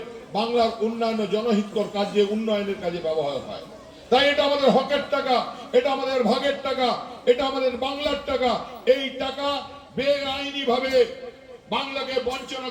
বাংলার উন্নয়ন জনহিতকর কাজে উন্নয়নের কাজে ব্যবহার হয়। তাই এটা আমাদের হকের টাকা, এটা আমাদের ভাগের টাকা, এটা আমাদের বাংলার টাকা। এই টাকা বেআইনি ভাবে বাংলাকে বঞ্চনা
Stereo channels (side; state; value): both; identical; correlation 1.00